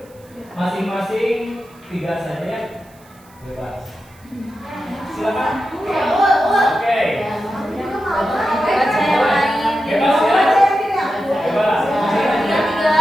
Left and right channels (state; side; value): noise; right; hiss, 29 dB below the sound